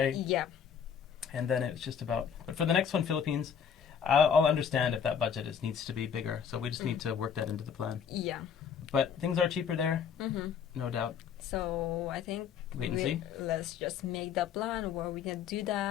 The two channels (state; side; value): quieter; right; 7.5 dB